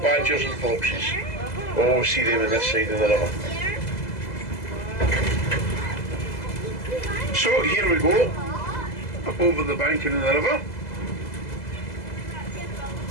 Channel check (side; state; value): right; late; 2.0 ms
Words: and foxes. Always see them on this side of the river. So here we go, up over the banking of the river.